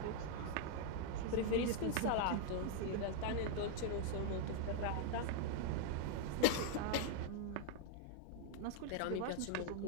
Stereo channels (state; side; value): different; both; correlation 0.00